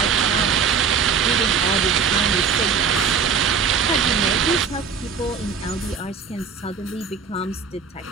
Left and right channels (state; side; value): quieter; left; 6.1 dB